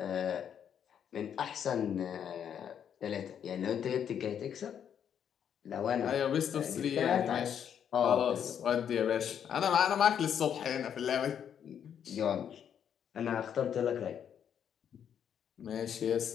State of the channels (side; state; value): right; quieter; 8.6 dB